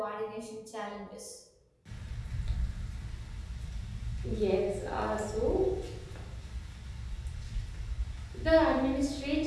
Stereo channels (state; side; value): identical; both; correlation 1.00